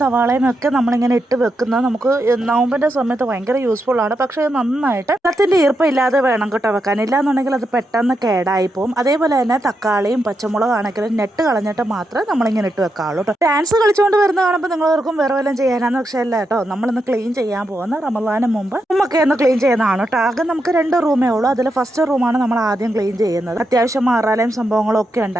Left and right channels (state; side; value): normal; both; correlation 0.84